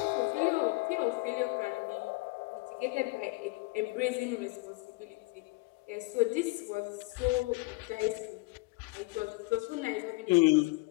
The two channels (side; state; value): right; quieter; 24.3 dB